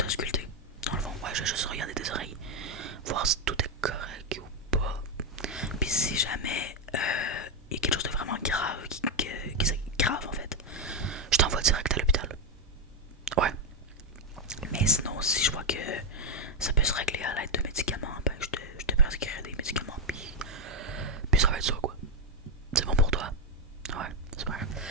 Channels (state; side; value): normal; both; correlation 0.03